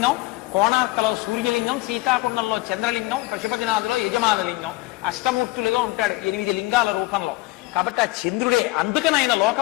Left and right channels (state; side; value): quieter; right; 20.2 dB